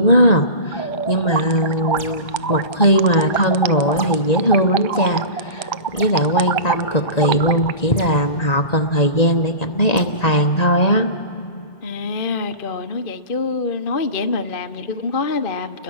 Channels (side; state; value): right; late; 1.9 ms